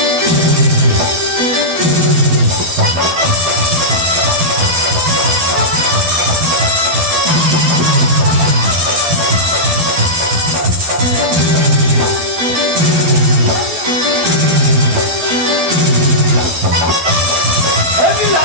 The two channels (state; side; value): late; left; 12 ms